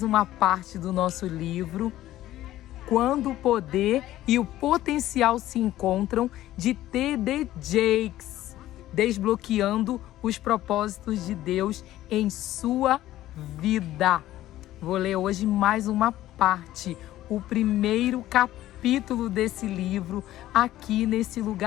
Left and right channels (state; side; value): quieter; right; 14.4 dB